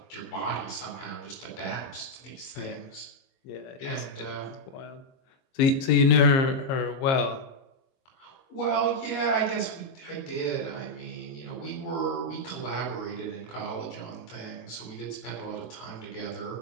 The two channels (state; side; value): late; right; 22 ms